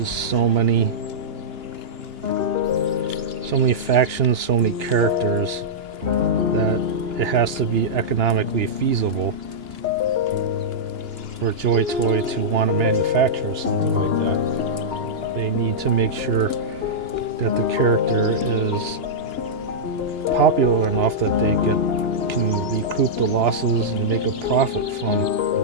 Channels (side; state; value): left; late; 2.9 ms